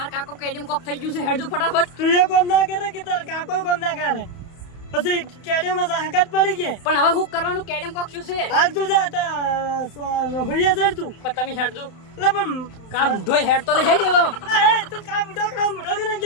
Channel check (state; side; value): late; right; 31 ms